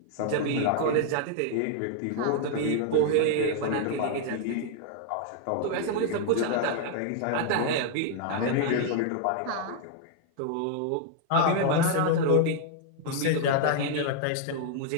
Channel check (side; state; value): both; different; correlation 0.00